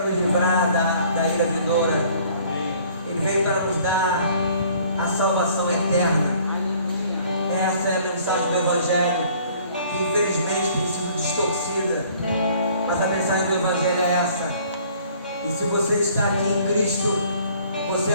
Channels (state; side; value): inverted; both; correlation -0.56